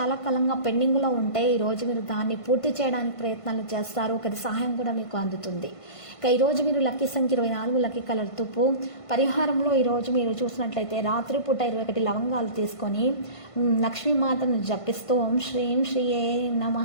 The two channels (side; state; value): right; late; 1.5 ms